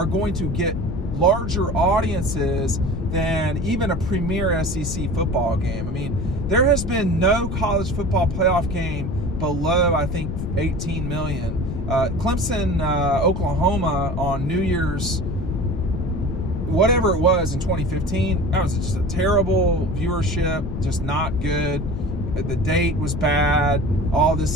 going to get larger audiences than even a premier SEC football game. I mean, there has been no college football playoff game below, I think, 18 million. Clemson, Oklahoma on New Year's, whatever it was in 2015, that was just a terrible viewership, just not good. The date was bad, all this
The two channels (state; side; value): noise; left; rumble, 5 dB below the sound